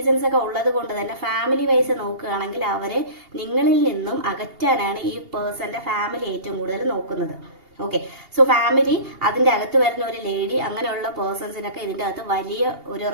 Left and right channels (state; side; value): late; left; 2.8 ms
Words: ഒക്കെ ഉള്ളത് കൊണ്ട് തന്നെ ഫാമിലി വൈസ് നോക്കുകയാണെങ്കിൽ അവരെ നിങ്ങളിൽ നിന്നും അകറ്റാനാണ് ഈ പേഴ്സന്റെ ഫാമിലി ഏറ്റവും കൂടുതൽ നോക്കുന്നത്. ഓക്കെ, സോ ഫാമിലി, അതിന്റെ അകത്ത് വരുന്ന ഒരു ലേഡി, അങ്ങനെയുള്ള പേഴ്സൺസിനൊക്കെ ഇതിന്റെ അകത്ത് വലിയ ഒരു